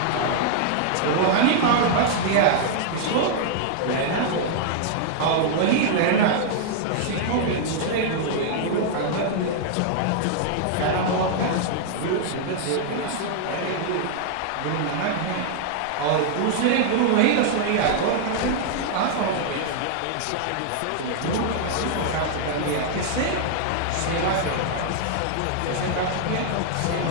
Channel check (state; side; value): different; both; correlation -0.01